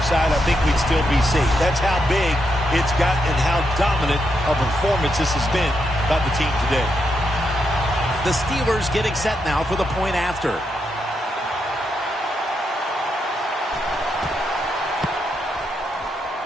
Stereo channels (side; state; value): both; normal; correlation 0.82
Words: side, I think we'd still be safe. That's how big it's got and how dominant a performance this has been by the team today. The Steelers getting set now for the point after.